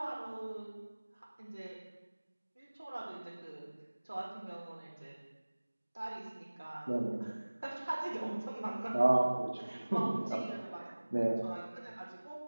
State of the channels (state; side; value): inverted; both; correlation -1.00